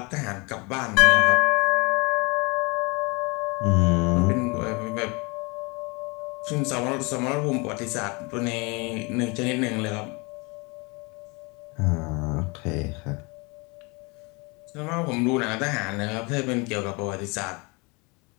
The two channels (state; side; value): quieter; right; 28.7 dB